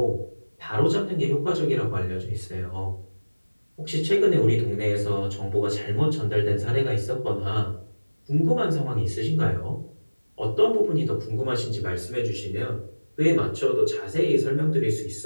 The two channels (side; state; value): both; inverted; correlation -1.00